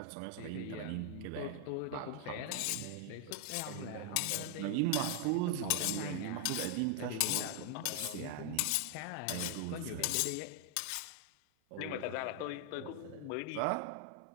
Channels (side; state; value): both; different; correlation 0.00